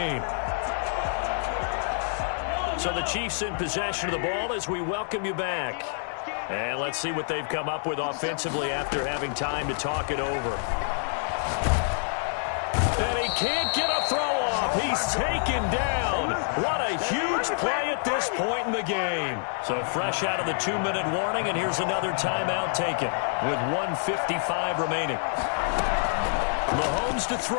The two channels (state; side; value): silent; right; 60 dB below the other